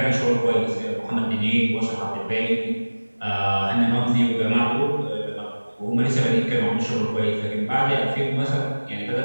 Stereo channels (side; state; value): both; inverted; correlation -1.00